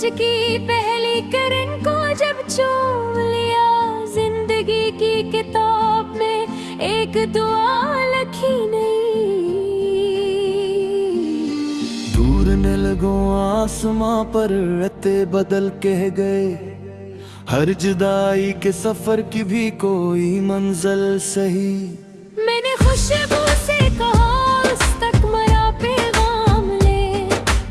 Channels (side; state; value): both; identical; correlation 1.00